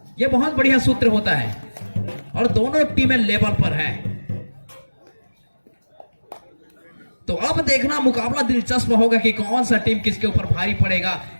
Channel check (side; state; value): both; inverted; correlation -1.00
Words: यह बहुत बढ़िया सूत्र होता है और दोनों टीमें लेवल पर है। तो अब देखना मुकाबला दिलचस्प होगा कि कौन सा टीम किसके ऊपर भारी पड़ेगा,